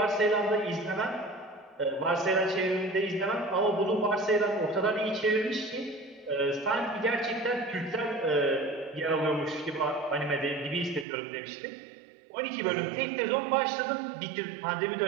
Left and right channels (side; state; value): left; drops out; at 11.1 s